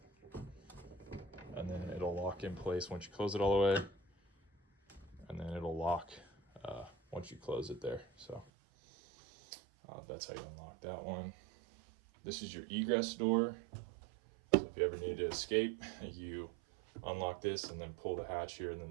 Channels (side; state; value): left; drops out; at 8.5 s